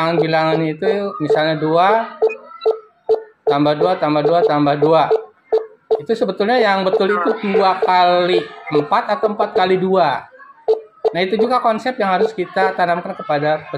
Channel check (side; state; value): both; identical; correlation 1.00